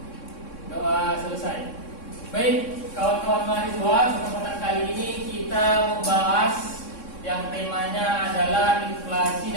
Doa selesai. Baik, kawan-kawan mahasiswa, kesempatan kali ini kita membahas yang temanya adalah inflasi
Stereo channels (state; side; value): late; right; 3.6 ms